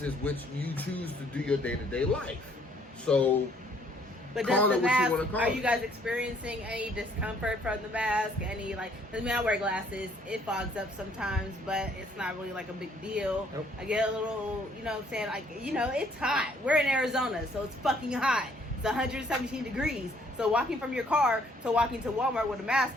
which you choose to do your day-to-day life. So. But does the mask, are you guys experiencing any discomfort from the mask? Any, like, I mean, I wear glasses. It fogs up sometimes, but it's not really like a big deal. Nope. I get a little, you know what I'm saying? Like, you know, it's hot. We're in Arizona, so it's fucking hot. It's 117 degrees. So walking from your car to walking to Walmart with a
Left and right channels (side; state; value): both; normal; correlation 0.64